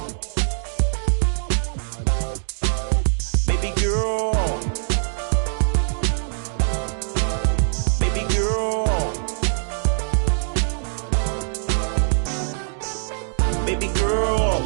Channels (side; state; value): left; silent; digital silence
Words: Baby girl. Baby girl. Baby girl,